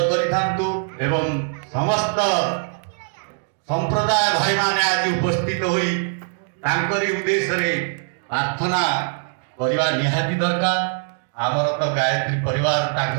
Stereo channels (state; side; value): silent; left; 64 dB below the other